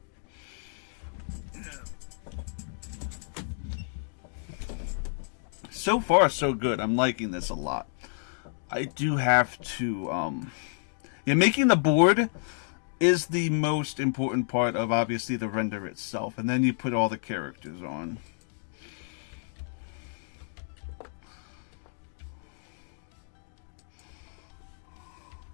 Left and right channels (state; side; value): silent; right; digital silence